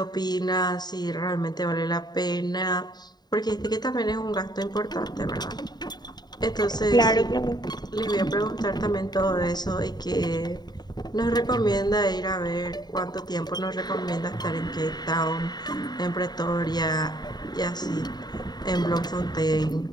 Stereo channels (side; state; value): right; late; 0.20 ms